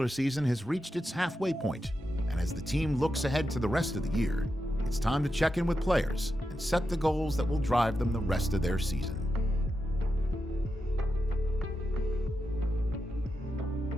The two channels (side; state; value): both; normal; correlation 0.88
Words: season has reached its halfway point, and as the team looks ahead to the rest of the year, it's time to check in with players and set the goals that will drive them the rest of their season.